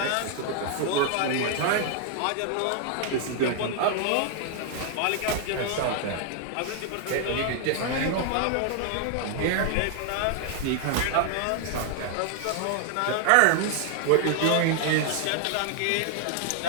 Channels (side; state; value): both; different; correlation 0.00